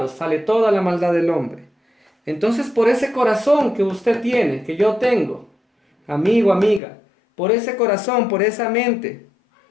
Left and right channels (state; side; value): drops out; right; at 6.8 s